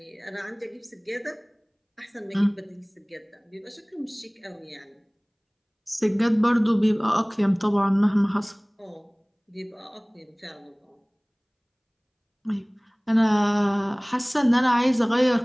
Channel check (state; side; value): identical; both; correlation 1.00